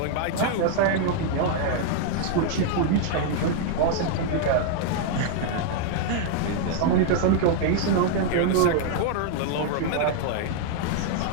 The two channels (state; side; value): different; both; correlation 0.00